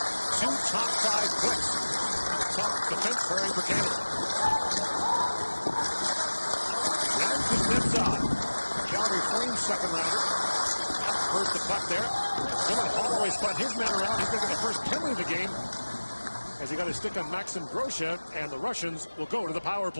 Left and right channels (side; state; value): both; inverted; correlation -1.00